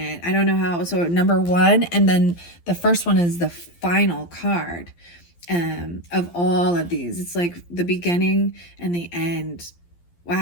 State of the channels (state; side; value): late; right; 12 ms